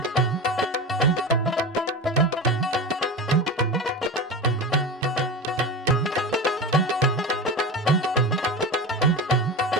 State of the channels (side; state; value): both; normal; correlation 0.25